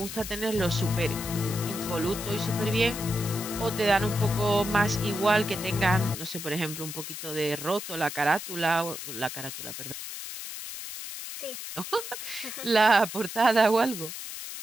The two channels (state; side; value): noise; left; hiss, 8 dB below the sound